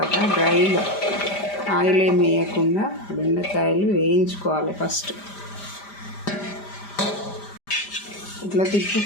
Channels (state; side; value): late; right; 5.0 ms